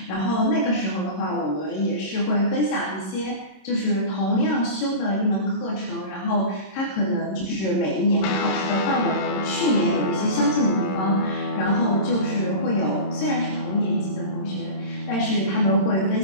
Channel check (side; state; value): right; late; 26 ms